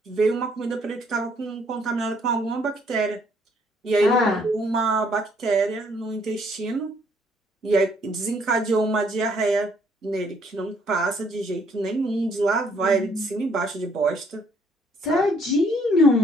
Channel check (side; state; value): both; normal; correlation 0.66